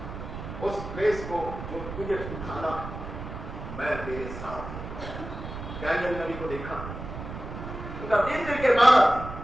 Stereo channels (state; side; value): noise; right; rumble, 9 dB below the sound